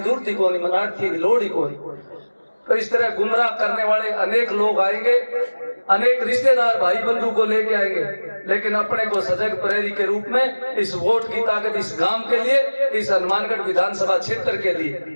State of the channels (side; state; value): both; inverted; correlation -1.00